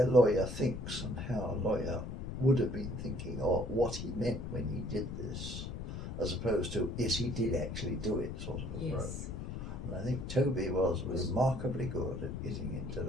lawyer thinks and how a lawyer would have been thinking or what he meant when he did this, as opposed to, yes, he did actually do it sort of approach. yes. And I think Toby was remarkably good at getting into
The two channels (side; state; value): left; noise; rumble, 6 dB below the sound